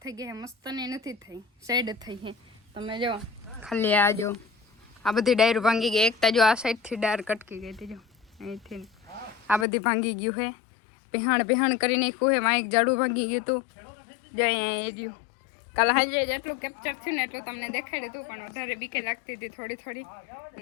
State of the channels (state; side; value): drops out; right; at 9.7 s